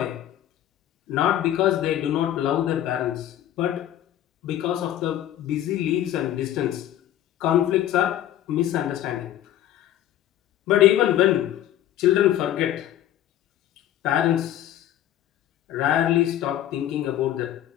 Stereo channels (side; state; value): right; quieter; 12.1 dB